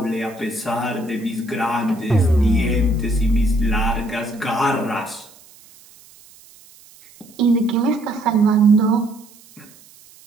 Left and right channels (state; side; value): noise; right; hiss, 25 dB below the sound